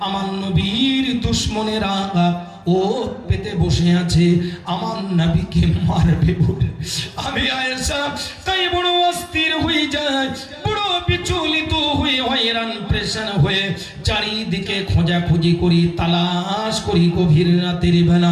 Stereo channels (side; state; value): both; identical; correlation 1.00